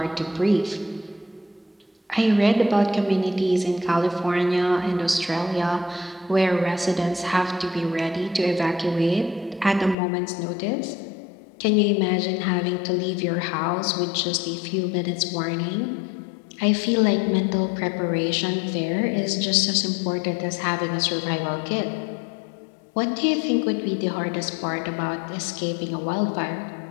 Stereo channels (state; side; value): drops out; right; at 10.0 s